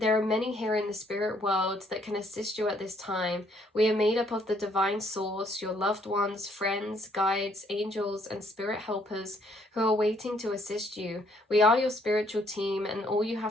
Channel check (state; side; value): normal; both; correlation 0.67